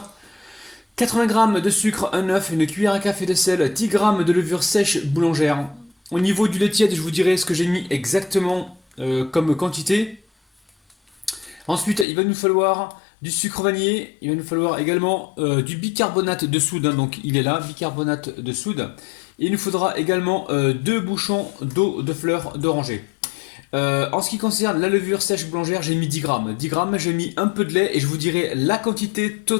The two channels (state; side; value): drops out; right; at 12.1 s